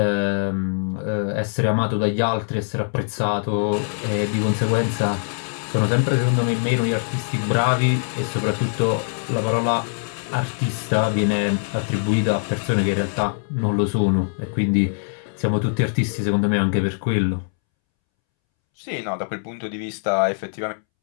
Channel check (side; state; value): right; silent; 64 dB below the other